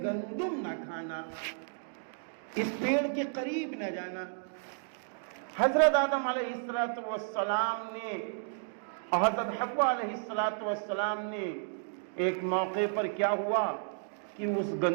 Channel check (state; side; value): silent; left; digital silence